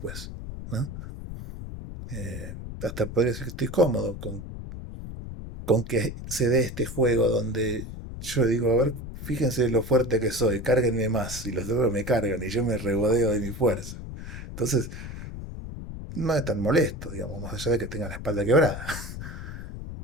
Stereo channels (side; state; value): left; noise; rumble, 9 dB below the sound